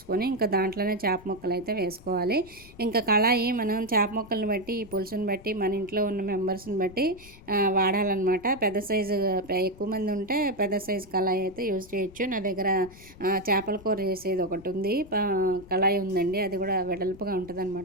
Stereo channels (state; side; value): noise; left; rumble, 20 dB below the sound